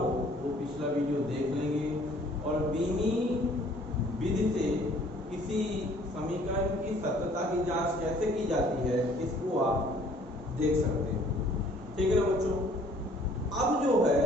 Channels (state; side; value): normal; both; correlation 0.57